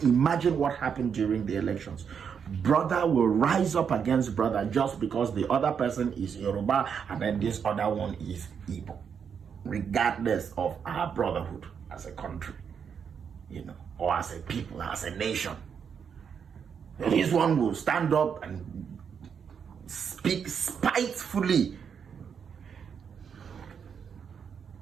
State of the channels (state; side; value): quieter; left; 7.1 dB